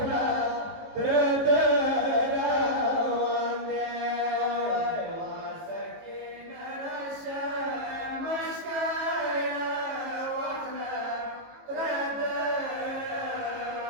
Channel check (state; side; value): late; left; 18 ms